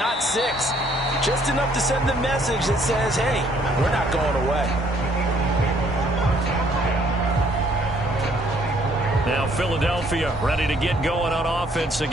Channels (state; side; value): normal; both; correlation 0.64